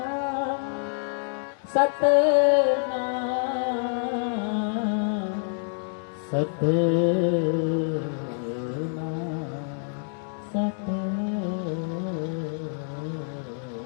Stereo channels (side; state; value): right; silent; 58 dB below the other